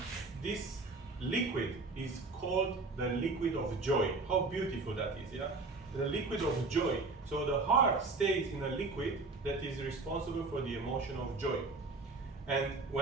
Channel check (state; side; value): quieter; left; 3.6 dB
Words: this liquid is called the liquid of joy. How beautiful that is, yeah? The liquid of joy. So the heart stays in a liquid that is responsible for the emotion of joy. And